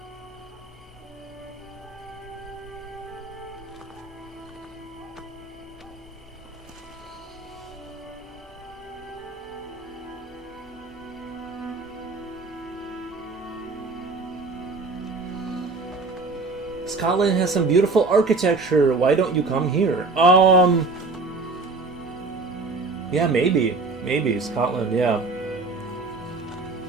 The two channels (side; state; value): left; quieter; 3.7 dB